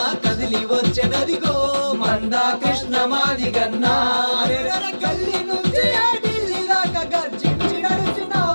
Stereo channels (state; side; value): inverted; both; correlation -1.00